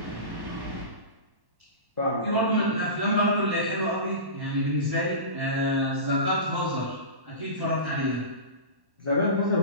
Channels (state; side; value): late; left; 1.1 ms